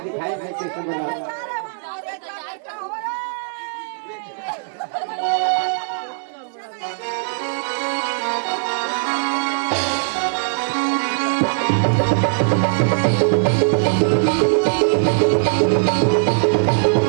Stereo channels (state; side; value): silent; left; digital silence